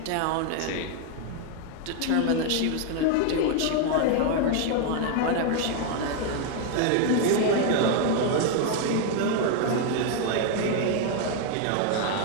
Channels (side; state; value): both; different; correlation 0.01